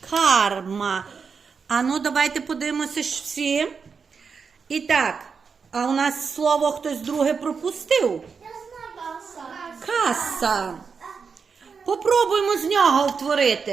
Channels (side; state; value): left; quieter; 5.6 dB